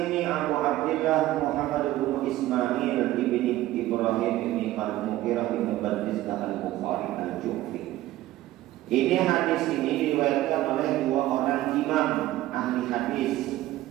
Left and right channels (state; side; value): quieter; left; 15.5 dB